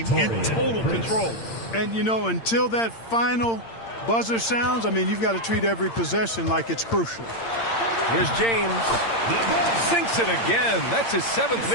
in total control. And, you know, until that final buzzer sounds, I mean, you've got to treat every possession like it's crucial. Here's James. Sinks it again. That's his 7th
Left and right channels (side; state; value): right; late; 8.8 ms